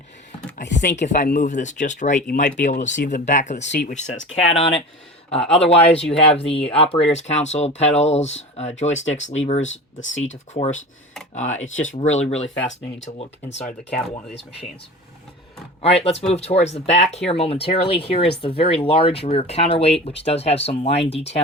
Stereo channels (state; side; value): normal; both; correlation 0.34